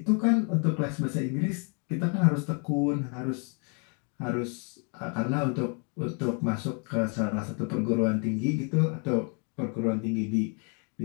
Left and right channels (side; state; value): right; quieter; 37.9 dB